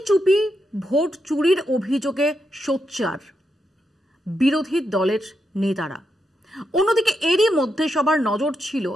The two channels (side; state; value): both; normal; correlation 0.83